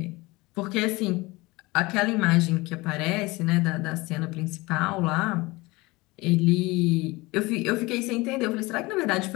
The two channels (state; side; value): quieter; right; 22.4 dB